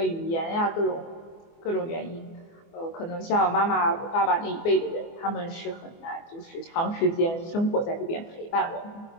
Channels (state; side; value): late; right; 24 ms